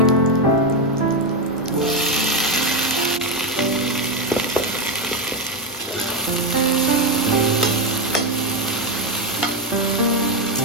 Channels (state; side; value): normal; both; correlation 0.07